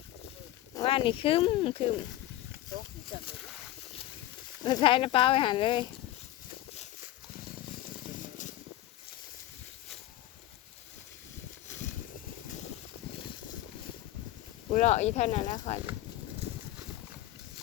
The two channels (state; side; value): quieter; right; 14.9 dB